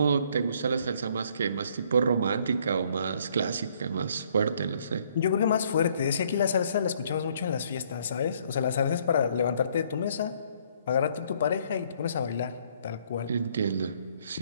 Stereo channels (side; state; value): both; inverted; correlation -0.64